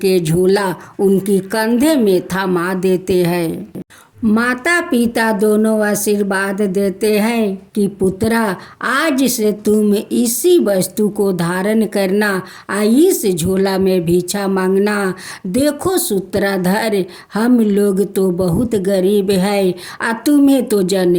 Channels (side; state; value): both; identical; correlation 1.00